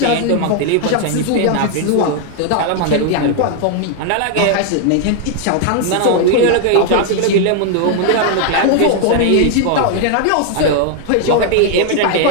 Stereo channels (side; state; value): both; different; correlation 0.00